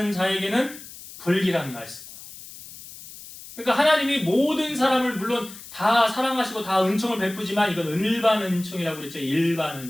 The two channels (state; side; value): noise; left; hiss, 16 dB below the sound